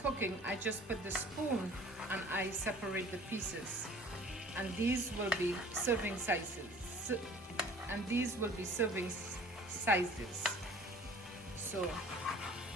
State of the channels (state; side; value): normal; both; correlation 0.48